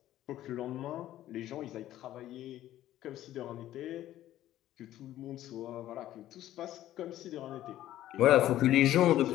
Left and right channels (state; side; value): quieter; right; 13.5 dB